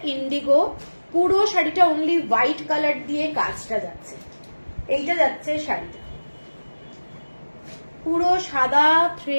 ইন্ডিগো, পুরো শাড়িটা অনলি হোয়াইট কালার দিয়ে কাজটা যাচ্ছে। এইটা যাচ্ছে শাড়িটা, পুরো সাদা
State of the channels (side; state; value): both; inverted; correlation -1.00